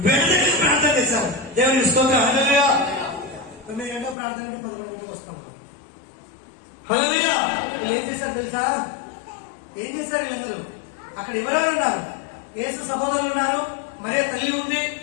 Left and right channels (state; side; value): drops out; right; at 4.2 s